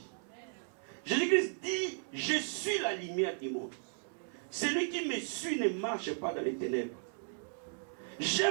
Jésus-Christ dit, je suis la lumière du monde. Celui qui me suit ne marche pas dans les ténèbres.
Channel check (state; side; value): silent; left; 54 dB below the other